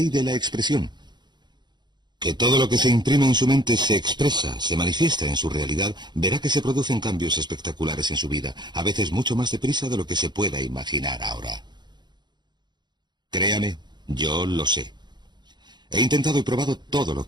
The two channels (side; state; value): left; late; 0.21 ms